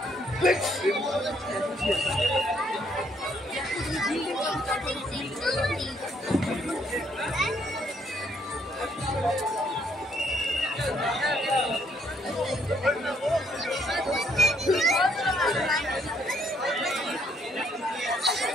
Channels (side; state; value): both; normal; correlation 0.68